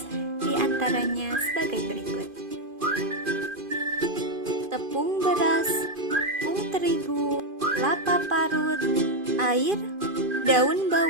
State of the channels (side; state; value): left; late; 2.5 ms